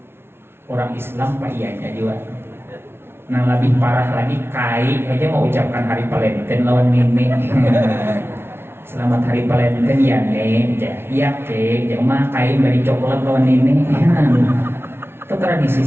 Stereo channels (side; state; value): left; late; 0.12 ms